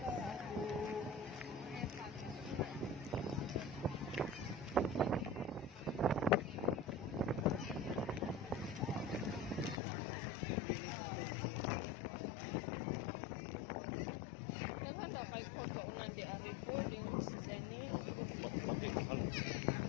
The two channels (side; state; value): right; drops out; at 9.8 s